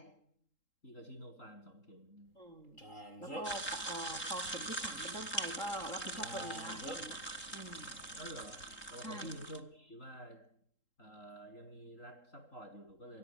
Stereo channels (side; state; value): right; late; 3.8 ms